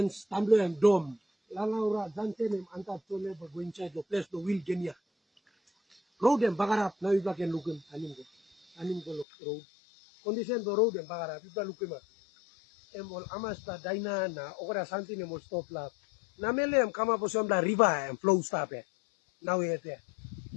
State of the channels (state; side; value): drops out; right; at 9.2 s